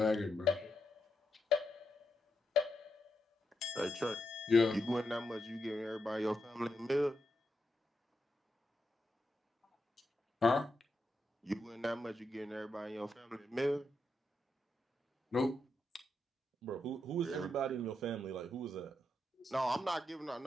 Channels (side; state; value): both; normal; correlation 0.83